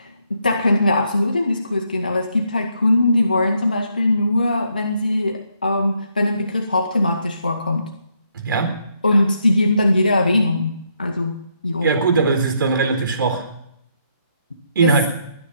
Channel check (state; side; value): inverted; both; correlation -0.75